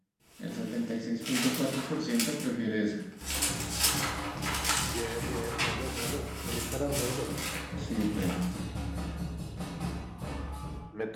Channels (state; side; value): identical; both; correlation 1.00